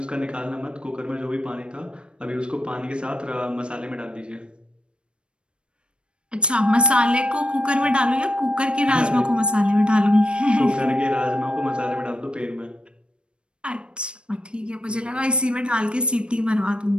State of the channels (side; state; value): left; late; 0.056 ms